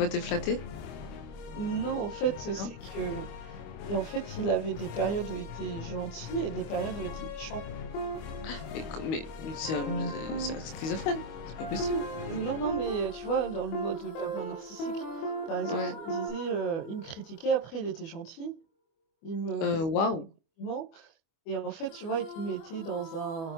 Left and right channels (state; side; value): late; right; 25 ms